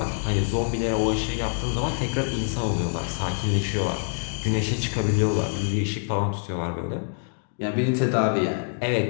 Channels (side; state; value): right; silent; digital silence